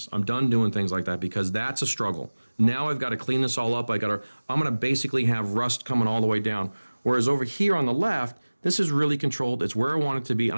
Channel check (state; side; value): inverted; both; correlation -1.00